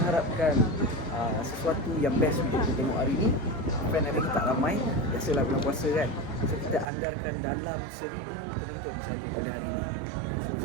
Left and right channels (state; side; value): drops out; left; at 6.9 s